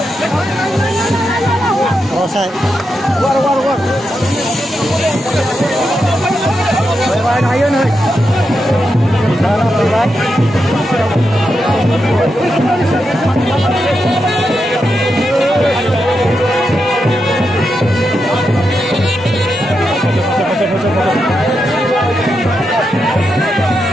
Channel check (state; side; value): normal; both; correlation 0.86